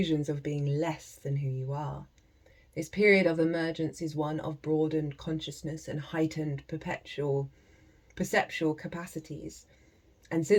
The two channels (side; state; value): both; identical; correlation 1.00